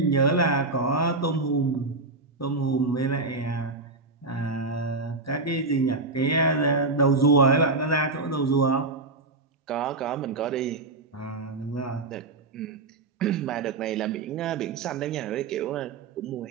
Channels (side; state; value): left; quieter; 3.5 dB